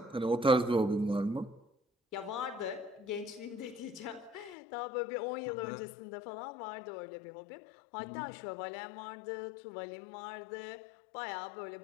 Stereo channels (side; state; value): right; drops out; at 4.5 s